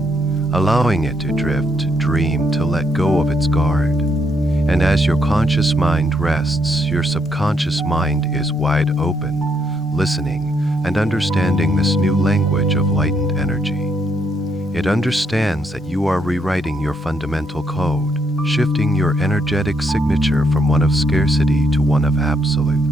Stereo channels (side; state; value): both; normal; correlation 0.75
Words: allowing it to drift, to dream, to let go of its guard. And as your conscious mind rests, your subconscious mind is wide open, listening and understanding this new language of lightened energy. It understands that you are rewriting your fundamental code, shifting your energetic signature from one of scarcity to one of